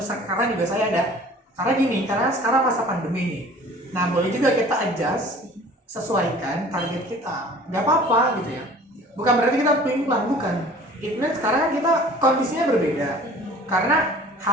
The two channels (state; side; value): normal; both; correlation 0.48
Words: sekarang juga saya ada. Karena gini, karena sekarang masa pandemi nih. Nah, boleh juga kita adjust, sesuaikan target kita. Nggak apa-apa gitu ya. Bukan berarti kita pelin-pelan, bukan. Itu sekarang kan kita kondisinya berbeda. Karena